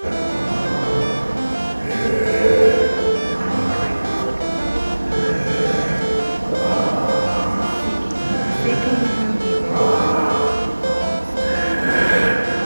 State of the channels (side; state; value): both; inverted; correlation -1.00